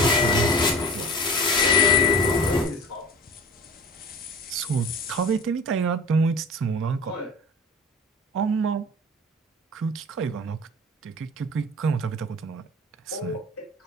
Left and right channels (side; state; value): both; normal; correlation 0.39